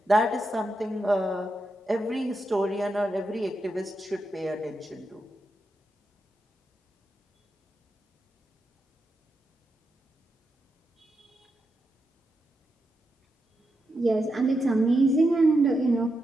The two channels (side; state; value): both; normal; correlation 0.86